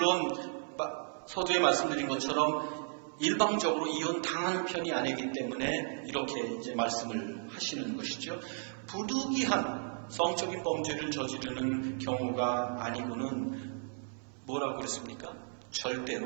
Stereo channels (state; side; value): silent; left; 55 dB below the other